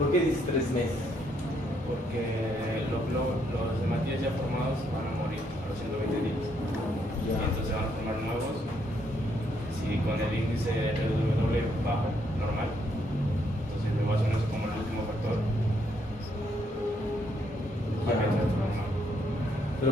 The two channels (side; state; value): both; normal; correlation 0.73